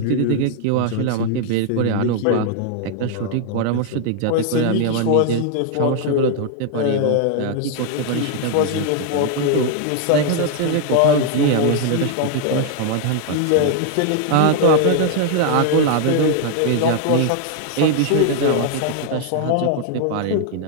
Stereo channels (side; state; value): both; different; correlation 0.00